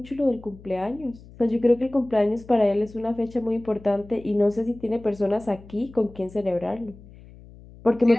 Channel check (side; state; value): left; noise; hum, 21 dB below the sound